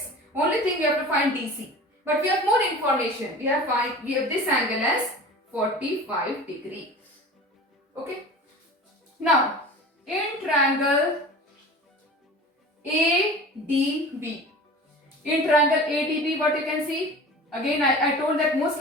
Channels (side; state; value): both; normal; correlation 0.38